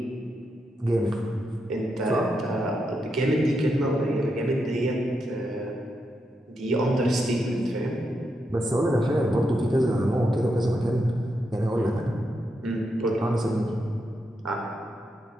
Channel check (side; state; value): both; normal; correlation 0.84